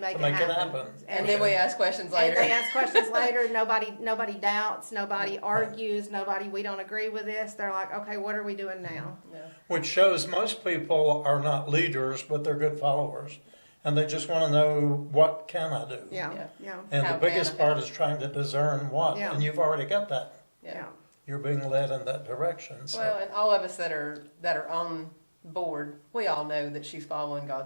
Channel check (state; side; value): inverted; both; correlation -1.00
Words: To make it happen. happen. And then we ask questions And later. they ask questions later. Nobody doubts. Nobody argues. We don't agree with this. They're like, okay, what are we doing now? Yeah. Which shows most people are not leaders, but they're good followers. And they just want to know, what can I do? Yeah, Yeah. yeah, And How the biggest can I part is trying to discern what. Yeah. And you've already got that. yeah. You're being led in that direction. So. Well, and all of us that are on board, we all know that she's following